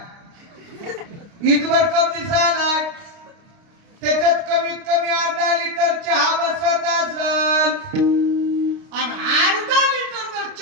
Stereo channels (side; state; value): left; late; 29 ms